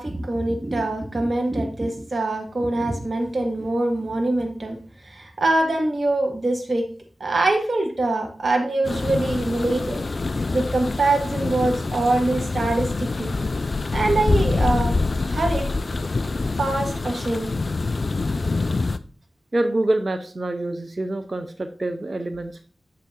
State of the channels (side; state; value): both; normal; correlation 0.93